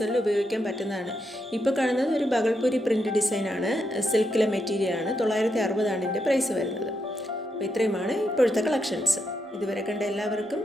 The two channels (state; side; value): normal; both; correlation 0.82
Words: ഉപയോഗിക്കാൻ പറ്റുന്നതാണ്. ഇപ്പോൾ കാണുന്നത് ഒരു ബഗൾപൂരി പ്രിൻ്റ് ഡിസൈനാണ്. സിൽക്കിലെ മെറ്റീരിയലാണ്. 960 ഇതിൻ്റെ പ്രൈസ് വരുന്നത്. അപ്പോൾ ഇത്രയുമാണ് ഇപ്പോഴത്തെ കളക്ഷൻസ്. ഇതുവരെ കണ്ട എല്ലാവർക്കും